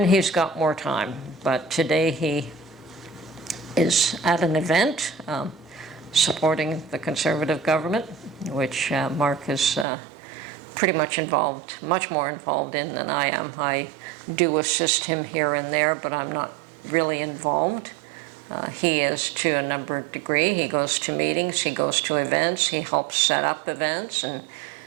he's got more time. But today he is at an event supporting the Conservative government, which Mark is pretty much involved, much more involved in than I am. I do assist him here and there, but I'm not really involved. He is to a number of degree. He goes to meetings, he goes to events, he helps set up events and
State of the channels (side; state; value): left; drops out; at 9.9 s